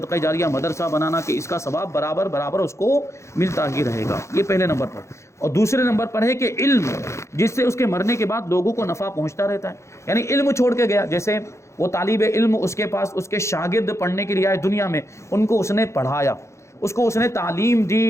جاریہ، مدرسہ بنانا کہ اس کا ثواب برابر اس کو ملتا ہی رہے گا، یہ پہلے نمبر پر۔ اور دوسرے نمبر پر ہے کہ علم، جس سے اس کے مرنے کے بعد لوگوں کو نفع پہنچتا رہتا ہے، یعنی علم چھوڑ کے گیا، جیسے وہ طالب علم، اس کے پاس اس کے شاگرد پڑھنے کے لیے آئے دنیا میں، ان کو اس نے پڑھایا، اس کو اس نے تعلیم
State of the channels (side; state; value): right; late; 0.14 ms